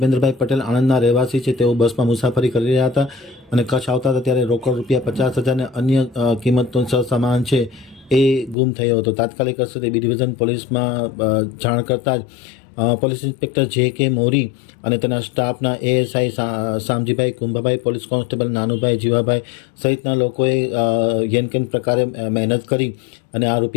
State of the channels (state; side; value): drops out; right; at 8.6 s